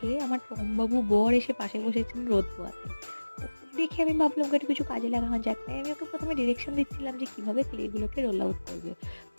আমার টমবাবু বর এসে পাশে বসেছেন রোদ পোয়াতে। ওকে দেখে আমি ভাবলাম ওকে একটু কিছু কাজে লাগানো যাক, তাই আমি ওকে প্রথমে ডিরেকশন দিচ্ছিলাম যে কিভাবে ক্লেগুলোকে রোল আউট করবে।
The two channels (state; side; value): inverted; both; correlation -1.00